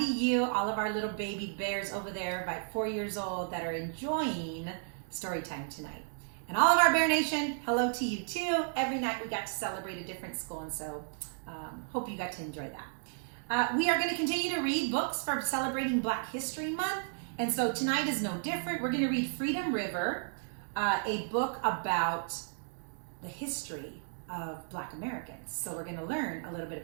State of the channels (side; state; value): left; silent; digital silence